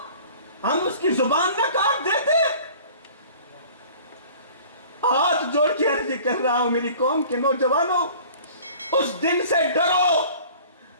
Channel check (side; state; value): both; inverted; correlation -0.47